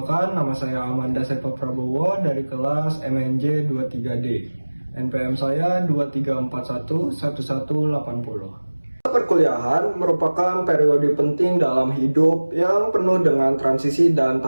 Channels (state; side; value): inverted; both; correlation -1.00